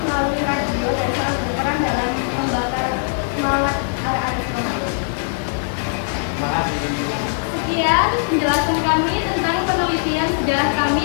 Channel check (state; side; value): silent; right; 61 dB below the other